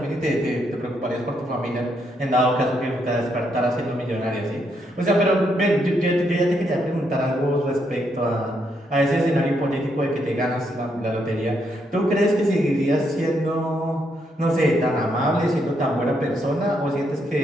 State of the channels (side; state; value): both; normal; correlation 0.76